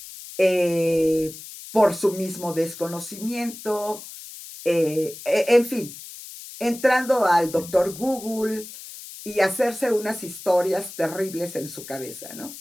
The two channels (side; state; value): left; noise; hiss, 14 dB below the sound